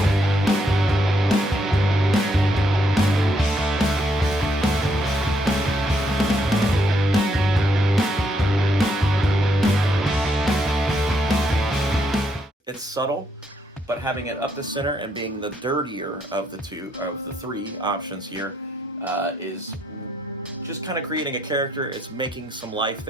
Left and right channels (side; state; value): both; normal; correlation 0.74